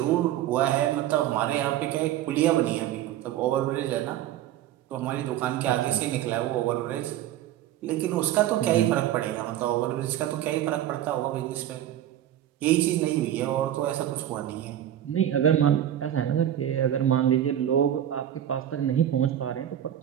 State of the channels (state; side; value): quieter; left; 11.7 dB